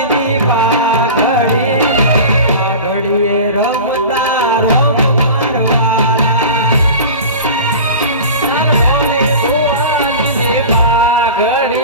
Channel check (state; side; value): inverted; both; correlation -0.33